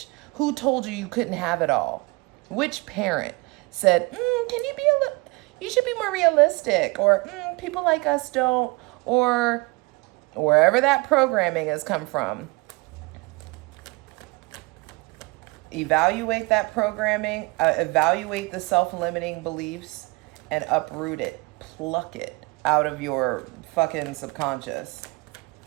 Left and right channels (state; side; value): quieter; left; 25.4 dB